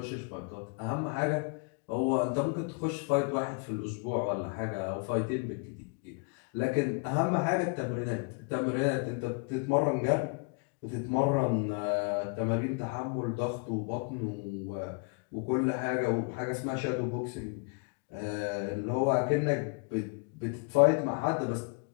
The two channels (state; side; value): quieter; right; 34.0 dB